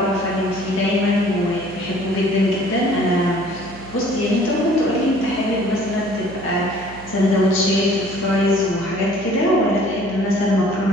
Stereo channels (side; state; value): right; noise; hum, 17 dB below the sound